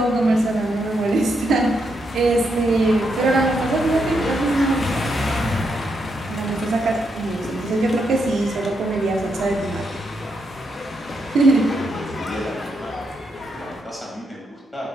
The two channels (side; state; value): both; normal; correlation 0.81